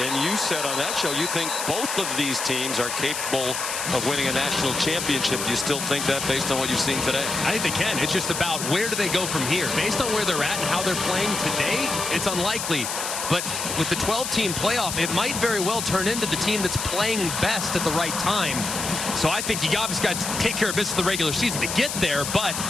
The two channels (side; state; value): left; noise; hiss, 4 dB below the sound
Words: you said on that show you think both of these teams are capable of winning a national championship. Do you still think that based on what you've seen today? I think they can. It's just about where do they go from here. Based on where they're at and how they're playing today, it's unlikely. But with the 12-team playoff, it might very well turn into the team that's playing best at the right time. So I think you obviously got to take care of business in the regular season to get there, but